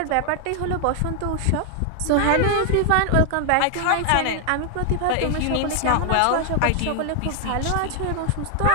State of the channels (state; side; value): different; both; correlation 0.00